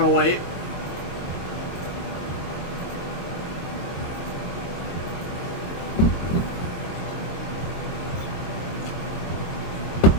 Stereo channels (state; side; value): late; right; 22 ms